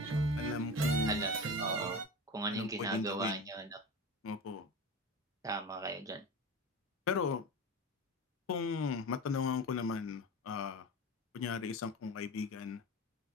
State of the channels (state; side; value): normal; both; correlation 0.28